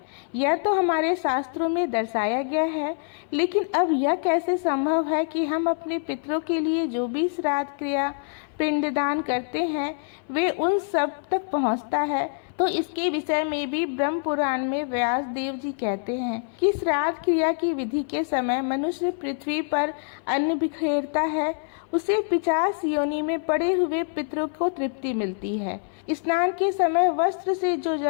यह तो हमारे शास्त्रों में दर्शाया गया है, लेकिन अब यह कैसे संभव है कि हम अपने पितरों के लिए जो भी श्राद्ध क्रिया पिंडदान करते हैं वे उन सब तक पहुंचता है। तो इसके विषय में भी ब्रह्म पुराण में व्यास देव जी कहते हैं कि श्राद्ध क्रिया की विधि के समय मनुष्य पृथ्वी पर अन्न बिखेरता है, उसे 50 योनि में पड़े हुए पितरों को तृप्ति मिलती है। स्नान के समय वस्त्र से जो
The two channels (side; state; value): right; silent; 59 dB below the other